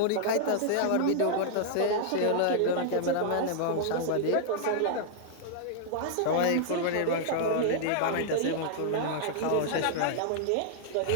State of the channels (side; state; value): both; different; correlation -0.01